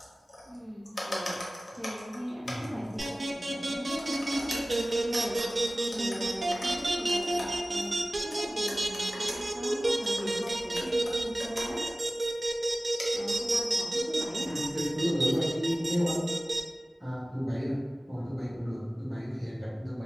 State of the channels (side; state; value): both; normal; correlation 0.97